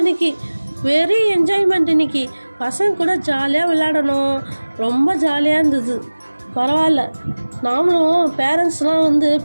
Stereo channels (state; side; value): inverted; both; correlation -1.00